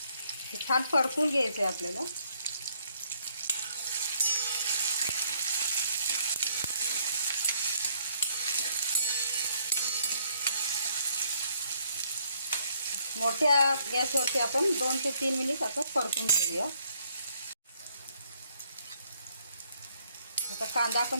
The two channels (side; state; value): both; inverted; correlation -0.67